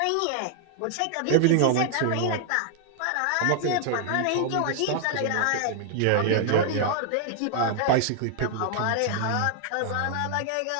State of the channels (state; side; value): different; both; correlation 0.00